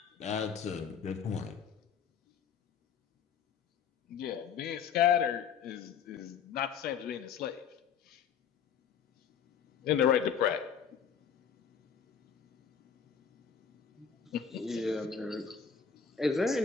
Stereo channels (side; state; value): right; quieter; 7.2 dB